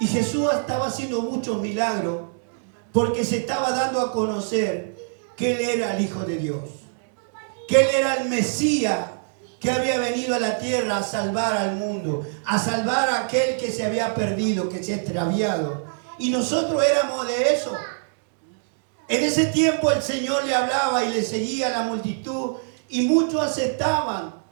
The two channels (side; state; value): left; silent; 63 dB below the other